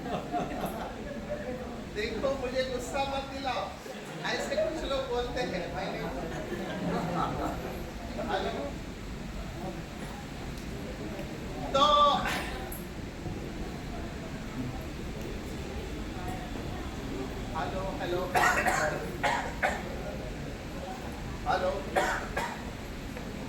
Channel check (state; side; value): identical; both; correlation 1.00